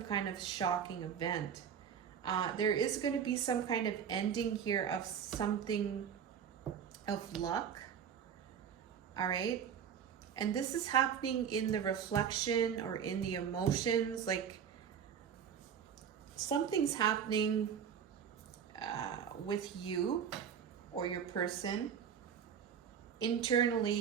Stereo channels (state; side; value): quieter; left; 7.9 dB